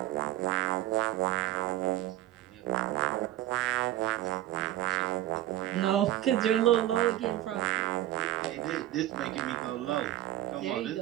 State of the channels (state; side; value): quieter; left; 14.2 dB